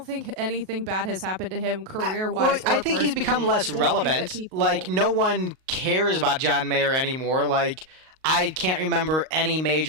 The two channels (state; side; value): late; left; 38 ms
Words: think anything bad has happened to him career-wise. Well, I or think he's become personally. less I don't think that relevant. people- Like no one cares about John Mayer anymore. Like I can't remember any